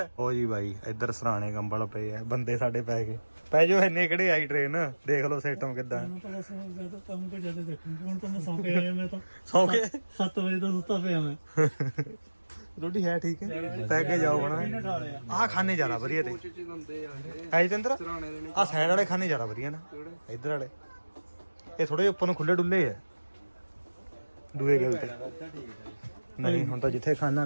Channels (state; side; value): inverted; both; correlation -1.00